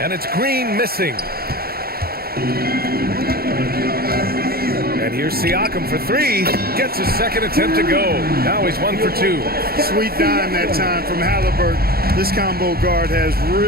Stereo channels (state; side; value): late; left; 0.44 ms